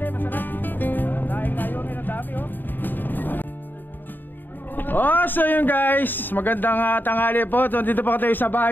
masarap. Dahil kayo, ang dami oh. Oh, so yun guys, magandang tanghali po. So, dito po tayo sa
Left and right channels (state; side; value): late; right; 0.091 ms